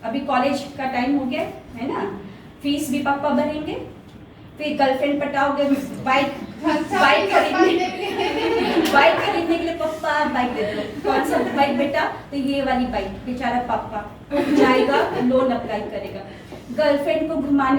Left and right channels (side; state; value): both; identical; correlation 1.00